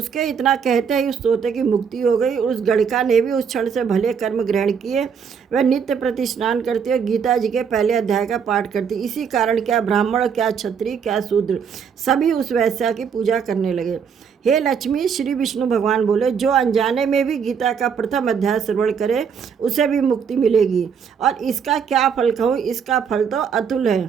इतना कहते ही उस तोते की मुक्ति हो गई। उस गणिका ने भी उस क्षण से भले कर्म ग्रहण किए। वह नित्य प्रति स्नान करती और गीता जी के पहले अध्याय का पाठ करती। इसी कारण क्या ब्राह्मण, क्या क्षत्रिय, क्या शूद्र, सभी उस वैश्या की पूजा करने लगे। हे लक्ष्मी, श्री विष्णु भगवान बोले, जो अनजाने में भी गीता का प्रथम अध्याय श्रवण करे उसे भी मुक्ति मिलेगी। और इसका क्या फल कहूँ, इसका फल तो अतुल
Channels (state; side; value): quieter; left; 6.8 dB